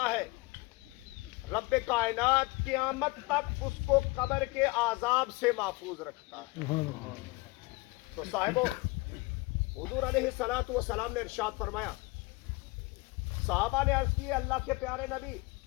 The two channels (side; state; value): right; quieter; 24.4 dB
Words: है, रब्बे कायनात क़यामत तक उसको कब्र के आज़ाब से महफूज रखता है। तो साहिबो, हुजूर अलैहिस्सलातु वस्सलाम ने इरशाद फरमाया, सहाबा ने अर्ज़ की, अल्लाह के प्यारे नबी,